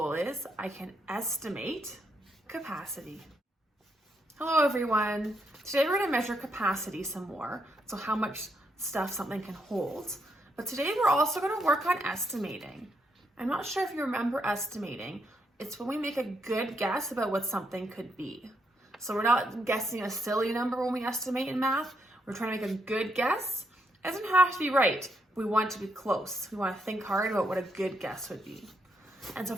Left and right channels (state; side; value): normal; both; correlation 0.77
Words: is I can estimate capacity. Hello everyone. Today we're going to measure capacity some more, so how much stuff something can hold. But today we're also going to work on estimating. I'm not sure if you remember estimating. It's when we make a good guess about what something could be. So we're not guessing a silly number when we estimate in math. We're trying to make a good guess. It doesn't have to be right. We want to be close. We want to think hard about what a good guess would be. And so